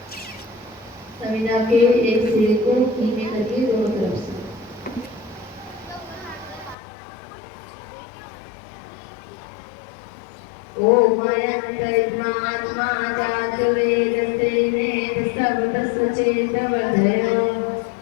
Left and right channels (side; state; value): right; drops out; at 6.8 s